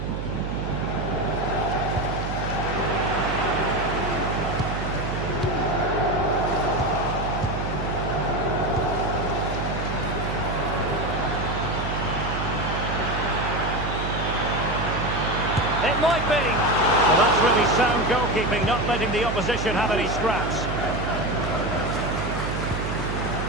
It might be. Well, that's really sound goalkeeping, not letting the opposition have any scraps.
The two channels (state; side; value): noise; right; hum, 4 dB below the sound